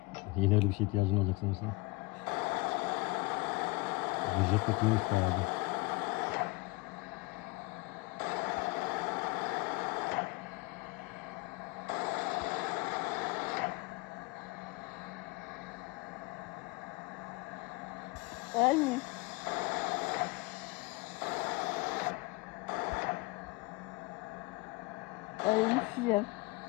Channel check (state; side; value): quieter; right; 23.9 dB